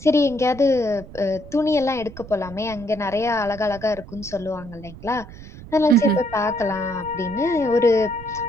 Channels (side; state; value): right; noise; rumble, 16 dB below the sound